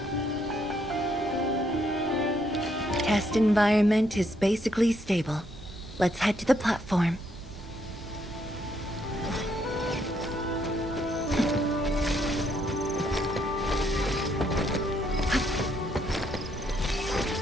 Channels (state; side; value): normal; both; correlation 0.73